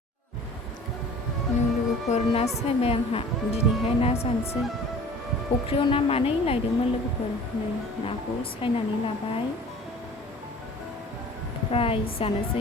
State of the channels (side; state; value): both; normal; correlation 0.45